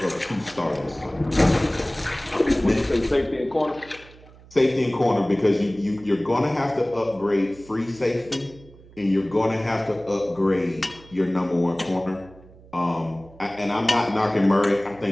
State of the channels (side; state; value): right; noise; hum, 23 dB below the sound